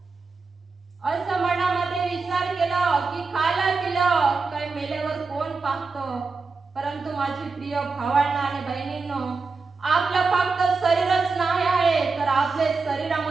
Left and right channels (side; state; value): left; quieter; 4.3 dB